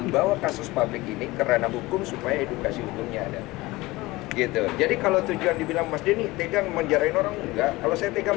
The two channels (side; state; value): right; quieter; 20.2 dB